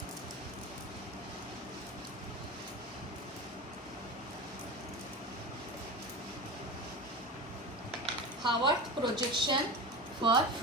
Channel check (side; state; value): both; normal; correlation 0.27